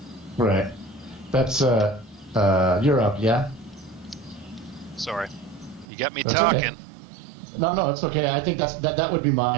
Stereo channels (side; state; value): left; drops out; at 5.9 s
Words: Right. That's you're up, yeah. Sorry, you got me talking. Okay. No, it's okay. I think that would be